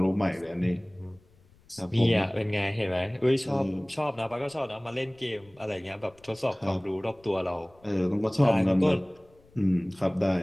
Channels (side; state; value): left; noise; rumble, 30 dB below the sound